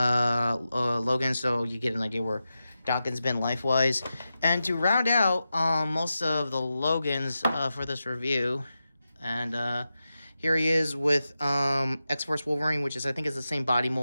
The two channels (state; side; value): inverted; both; correlation -0.91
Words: so you get an idea where Daken's been life-wise. And to round out most of the Logans for this review, and here he is with X-Force Wolverine, which I think is the same body